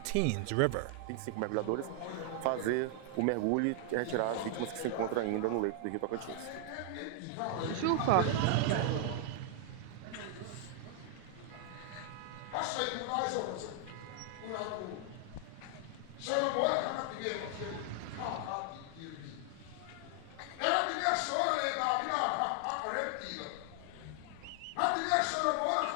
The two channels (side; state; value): both; different; correlation 0.00